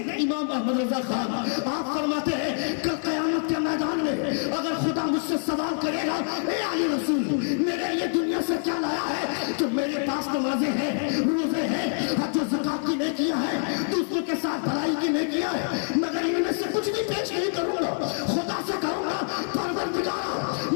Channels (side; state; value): right; silent; 61 dB below the other